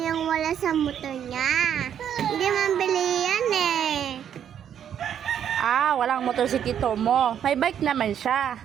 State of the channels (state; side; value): quieter; left; 9.2 dB